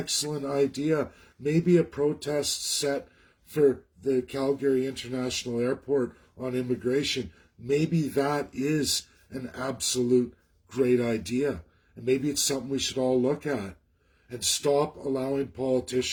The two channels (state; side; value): identical; both; correlation 1.00